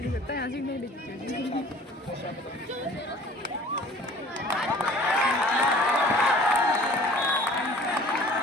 सकता, यहाँ से नहीं दिखती।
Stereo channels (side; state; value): both; normal; correlation 0.49